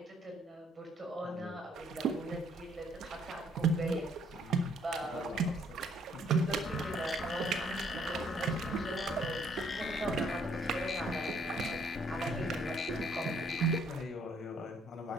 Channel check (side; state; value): both; normal; correlation 0.65